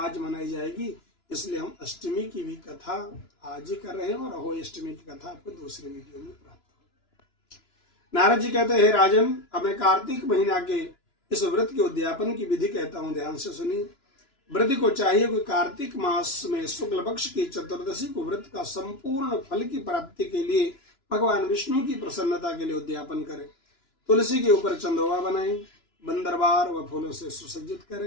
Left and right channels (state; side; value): late; right; 2.9 ms